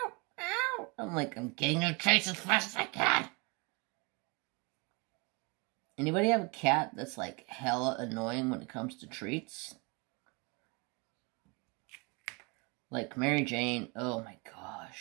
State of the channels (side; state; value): left; quieter; 29.8 dB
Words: meow. I'm like, I'm getting your treats as fast as I can. Anybody have a cat that's like hella annoying when it comes to treats? Like Mary Jane, oh my